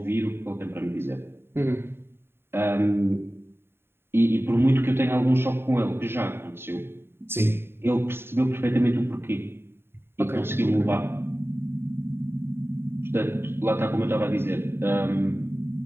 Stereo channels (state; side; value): late; left; 0.11 ms